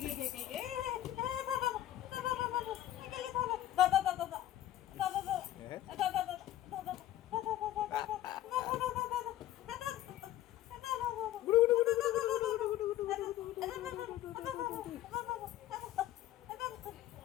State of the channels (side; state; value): right; quieter; 13.4 dB